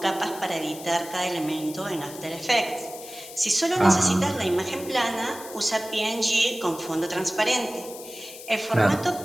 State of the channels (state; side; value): noise; left; hiss, 14 dB below the sound